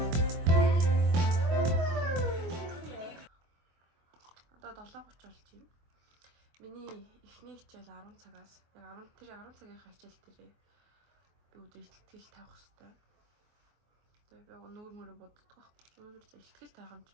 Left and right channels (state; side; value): late; left; 24 ms